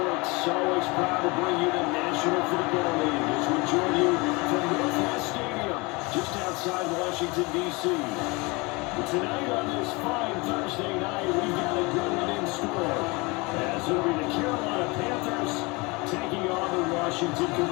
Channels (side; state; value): right; quieter; 26.1 dB